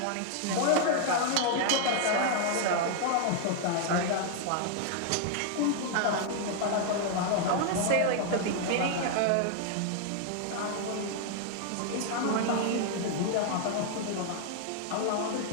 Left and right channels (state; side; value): different; both; correlation 0.00